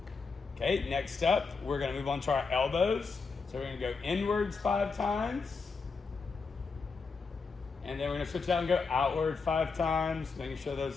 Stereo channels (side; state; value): right; quieter; 4.7 dB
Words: Okay, next up, we're gonna move on to our elbows. So we're gonna go inwards 5 times. And then we're gonna switch it out and go outward 5 times, making sure